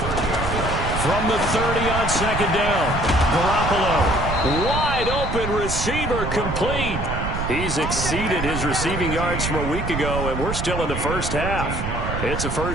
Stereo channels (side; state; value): right; noise; rumble, 4 dB below the sound